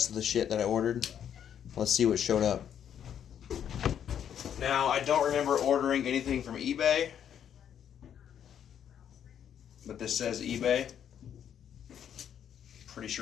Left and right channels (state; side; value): quieter; right; 9.2 dB